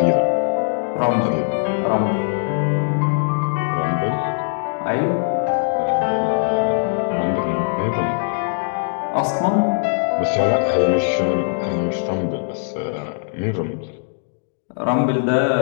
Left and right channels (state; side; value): silent; right; digital silence